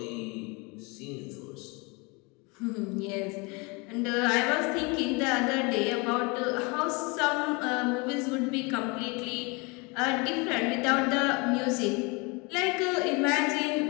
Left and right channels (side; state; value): right; quieter; 28.8 dB